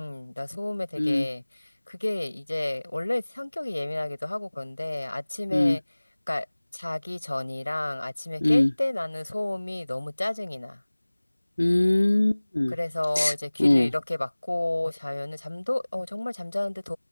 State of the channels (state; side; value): inverted; both; correlation -1.00